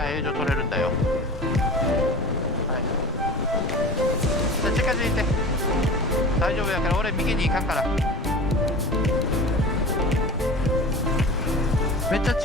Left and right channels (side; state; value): both; normal; correlation 0.35